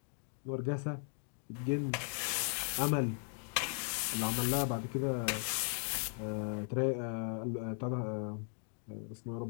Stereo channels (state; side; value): silent; right; 53 dB below the other